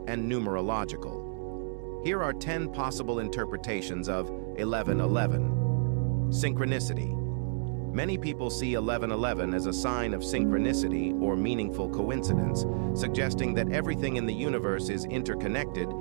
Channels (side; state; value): left; silent; digital silence